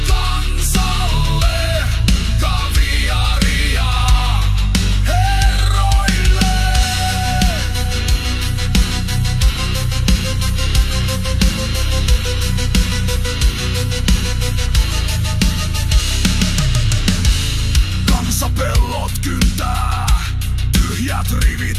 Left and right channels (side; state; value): both; identical; correlation 1.00